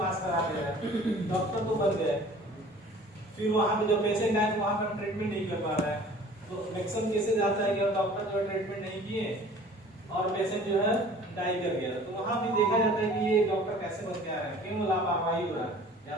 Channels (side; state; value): both; normal; correlation 0.48